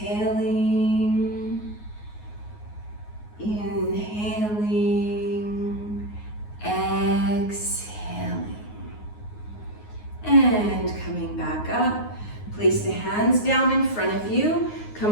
Inhaling. Exhaling. And coming back up. Place the hands down in front of you.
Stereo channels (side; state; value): right; late; 9.5 ms